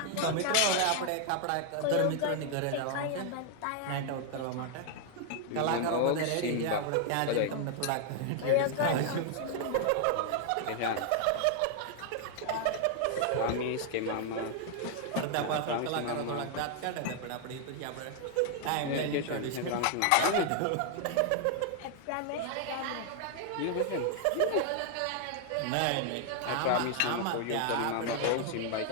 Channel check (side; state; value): both; different; correlation 0.00